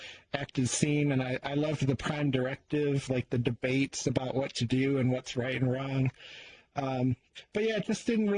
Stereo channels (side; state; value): both; identical; correlation 1.00